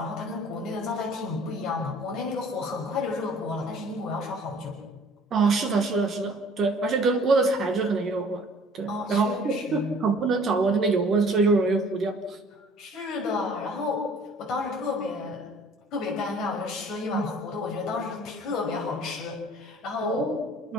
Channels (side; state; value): both; normal; correlation 0.53